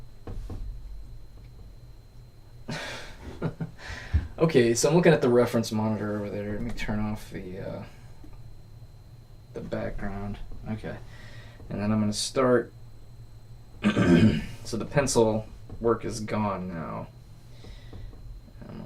Okay, so I'm looking at the reference monitor over there. Let me turn off the background. Okay, and then I'm gonna start. So the pencil work is gone now. I'm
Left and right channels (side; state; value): both; identical; correlation 1.00